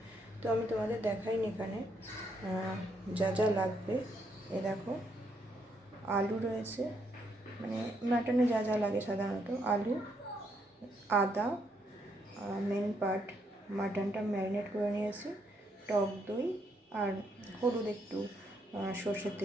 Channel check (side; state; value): both; normal; correlation 0.74